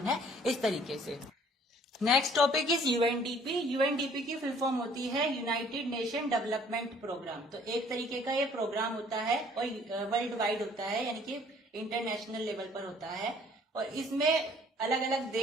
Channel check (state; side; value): normal; both; correlation 0.57